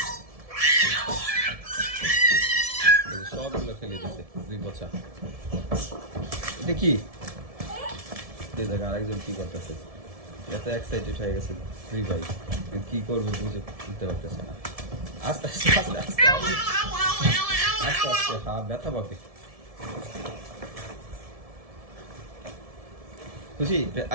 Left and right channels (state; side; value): late; left; 1.7 ms